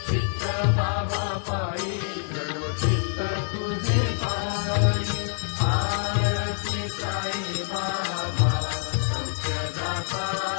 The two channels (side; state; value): right; silent; 59 dB below the other